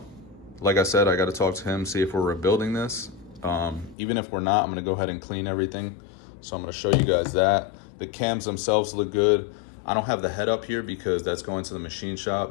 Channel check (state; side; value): drops out; right; at 4.0 s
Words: Like I said, I got to talk to him, see if we're rebuilding this. Even if we're not, I'm going to go ahead and clean everything. So I'm going to show you guys that. The cams themselves look good. I don't have the head up here because that's going to the machine